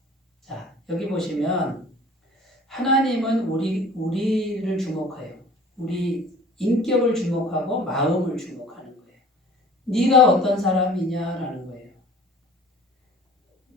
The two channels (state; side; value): normal; both; correlation 0.47